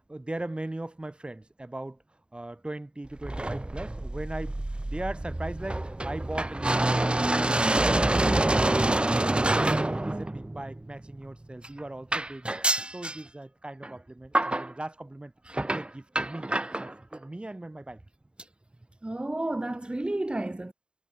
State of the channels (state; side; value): late; left; 0.050 ms